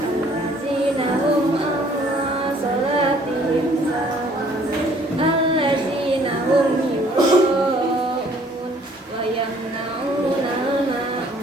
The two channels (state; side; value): normal; both; correlation 0.59